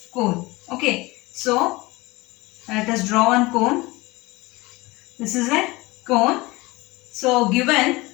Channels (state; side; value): quieter; right; 22.2 dB